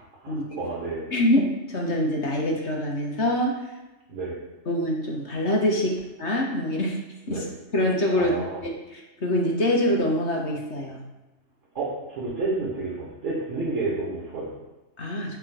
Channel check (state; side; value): late; right; 3.2 ms